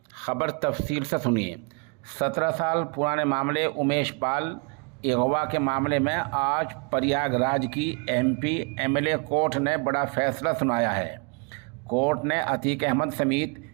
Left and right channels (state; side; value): quieter; left; 32.9 dB